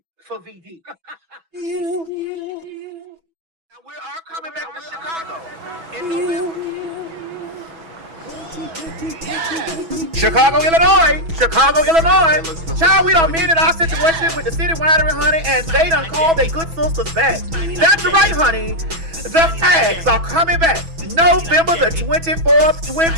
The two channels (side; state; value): left; late; 6.1 ms